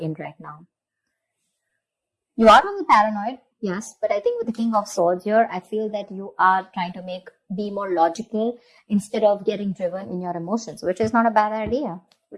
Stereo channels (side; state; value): both; identical; correlation 1.00